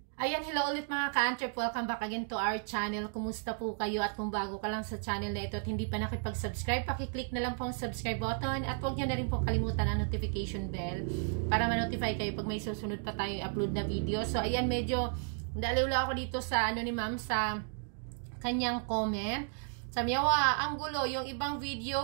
Ayan, hello ulit mga ka-Antrep. Welcome back again to our channel. Kumusta po kayo? At kung bago ka lang sa channel na ito at hindi pa nakipag-subscribe, pakiclick na lang po ang subscribe button at huwag nyo na rin po kalimutan ang notification bell para ma-notify kayo pag may susunod pa tayong upload na video. So, ayan, medyo daliwla ako dito sa ni ma'am sa kanyang comment. Sabi niya, ang gulo, yung ibang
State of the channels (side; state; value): left; silent; 55 dB below the other